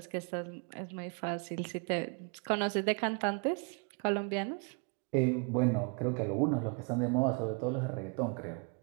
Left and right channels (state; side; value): quieter; left; 35.7 dB